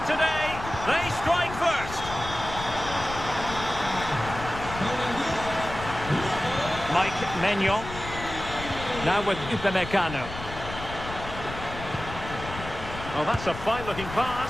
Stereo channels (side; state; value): left; noise; rumble, 10 dB below the sound